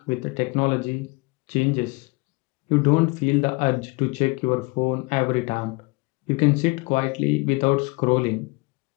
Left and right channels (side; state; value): right; quieter; 26.5 dB